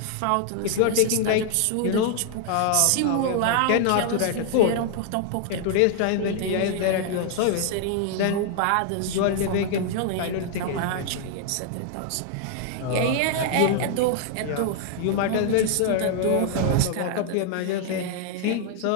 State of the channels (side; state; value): both; different; correlation 0.00